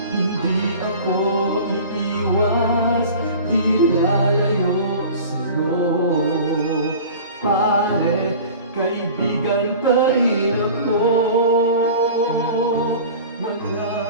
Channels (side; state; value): both; inverted; correlation -0.40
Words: Hindi ako iiwas, di lalayo sa'yo. Pare, kaibigan pa rin ako.